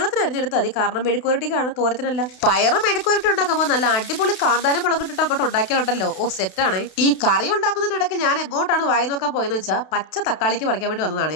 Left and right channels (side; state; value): right; late; 32 ms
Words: അരിഞ്ഞെടുത്താൽ മതി. കാരണം മെഴുക്കുവരട്ടിക്കാണ്, തോരത്തിനല്ല. പയറ് മെഴുക്കുവരട്ടി ഉണ്ടാക്കുമ്പോൾ നല്ല അടിപൊളി കാന്താരം മുളകിട്ടിട്ട് അങ്ങോട്ട് ഉണ്ടാക്കിയാലുണ്ടല്ലോ ഓ സെറ്റാണ്. ഈ കറി ഉണ്ടാക്കുന്നതിനിടയ്ക്ക് ഞാൻ എങ്ങോട്ടാണ് വായി നോക്കാൻ പോയെന്ന് വെച്ചാൽ പച്ച തക്കാളിക്ക് പറിക്കാൻ വേണ്ടി